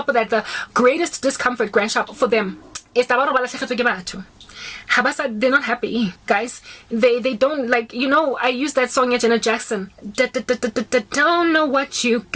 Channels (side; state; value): both; identical; correlation 1.00